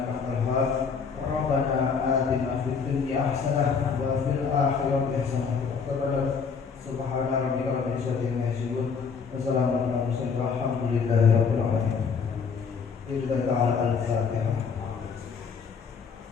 antal wahhab. Rabbana atina fid dunya hasanah wa fil akhirati hasanah wa qina subhana rabbika rabbil izzati amma yasifun wa salamun alal mursalin walhamdulillahi rabbil alamin. Bismillah ta'ala al-Fatihah.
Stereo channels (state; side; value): quieter; right; 5.8 dB